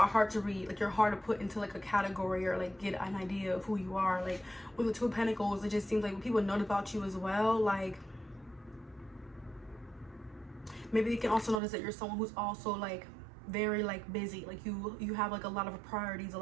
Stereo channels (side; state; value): left; drops out; at 11.6 s